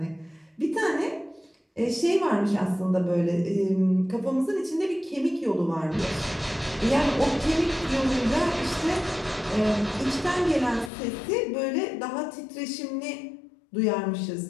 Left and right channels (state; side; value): drops out; right; at 10.9 s